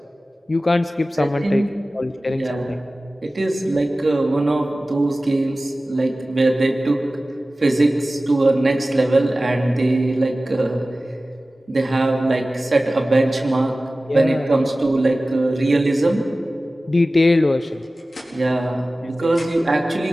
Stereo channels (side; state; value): both; normal; correlation 0.96